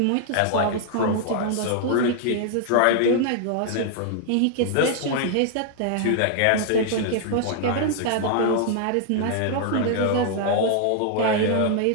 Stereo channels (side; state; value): both; different; correlation 0.00